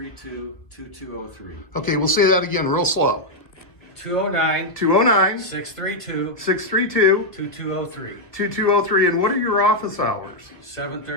Okay, we'll say that again real slow. 209 209 632 632 2203. 2203. And what are your office hours?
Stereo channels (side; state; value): right; late; 1.4 ms